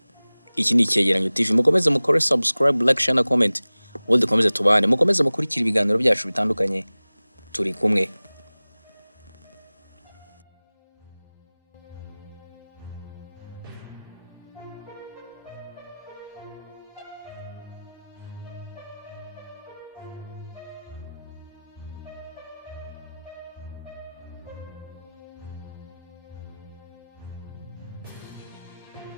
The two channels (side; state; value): both; inverted; correlation -0.99